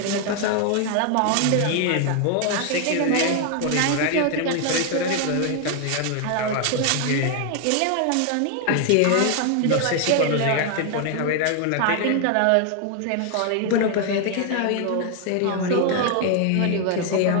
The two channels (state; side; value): different; both; correlation 0.00